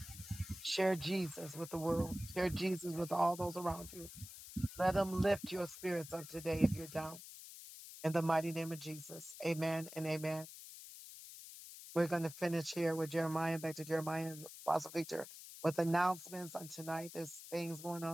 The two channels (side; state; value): left; noise; hiss, 14 dB below the sound